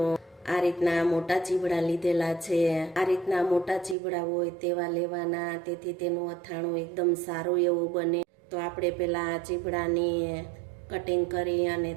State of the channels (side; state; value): left; drops out; at 4.0 s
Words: આ રીતના મોટા ચીવડા લીધેલા છે। આ રીતના મોટા ચીવડા હોય તેવા લેવાના, તેથી તેનું અથાણું એકદમ સારું એવું બને। તો આપણે પહેલા આ ચીવડાની કટિંગ કરી અને